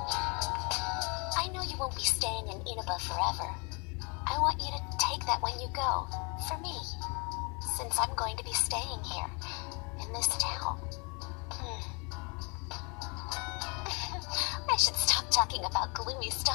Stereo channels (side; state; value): right; quieter; 32.2 dB